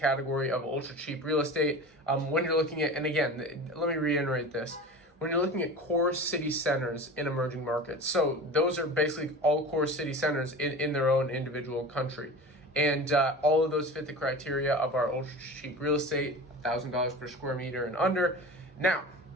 of ultra cheap real estate. When you're looking at, and again, let me reiterate this, when you're looking at core city centers in emerging markets. So those are basically all core city centers in their own individual country. And all of those fit the criteria of our ultra cheap real estate, $1,000 per square meter and under. Now,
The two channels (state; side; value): normal; both; correlation 0.34